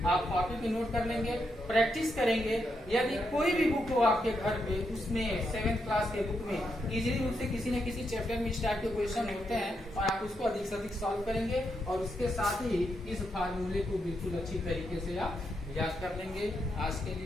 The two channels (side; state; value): both; normal; correlation 0.82